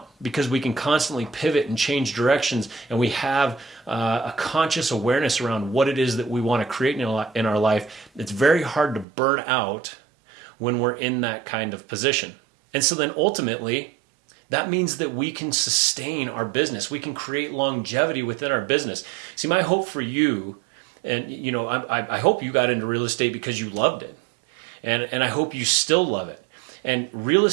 because we can constantly pivot and change directions, and we have a conscious awareness around what it is that we want to create in our life. It's very hard to burn out when we're in that kind of position. And so then ultimately, that means that we can sustain our business. We can create longevity within our business. See, my hope for you, and I hope you got into real estate because you loved it. And I hope you still love it. And real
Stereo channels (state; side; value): drops out; left; at 9.1 s